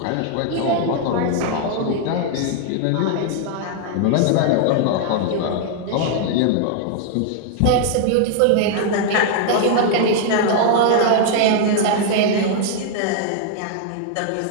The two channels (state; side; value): different; both; correlation 0.00